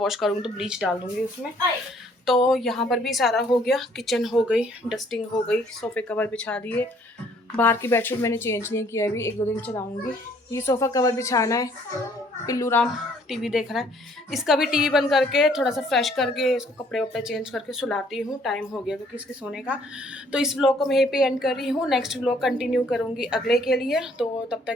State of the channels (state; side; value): normal; both; correlation 0.62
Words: करूँगी तो ब्लीच डाल दूँगी उसमें। तो यहाँ पर भी सारा हो गया, किचन हो गई, डस्टिंग हो गई, सोफ़े कवर बिछा दिए। बाहर की बेडशीट मैंने चेंज नहीं किया अभी, 1-2 दिन चलाऊँगी। ये सोफ़ा कवर बिछाना है। पिल्लू राम टीवी देख रहा है, इसका भी टीवी बंद करके थोड़ा सा फ्रेश करके इसको कपड़े वपड़े चेंज करके सुलाती हूँ। टाइम हो गया क्योंकि इसके सोने का। तो इस व्लॉग को मैं यहीं पे एंड कर रही हूँ। नेक्स्ट व्लॉग कंटिन्यू करूँगी अगले के लिए, तो तब